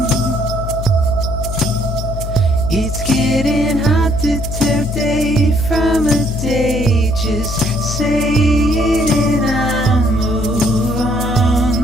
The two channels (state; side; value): noise; left; hum, 5 dB below the sound